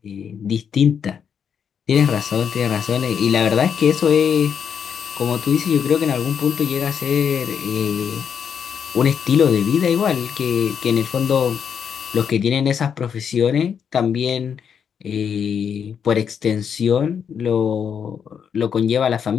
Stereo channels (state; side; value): quieter; right; 7.5 dB